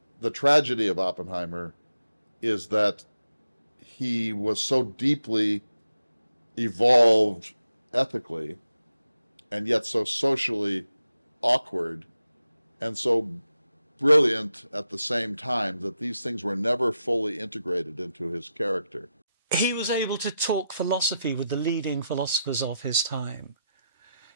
The tragedy of Oppenheimer is that he was so deeply evolved ethically and yet so socially awkward and so brilliant at the same time that these things were never fully integrated into his character. He was able to talk philosophy with the leading philosophers of his time.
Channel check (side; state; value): both; inverted; correlation -0.88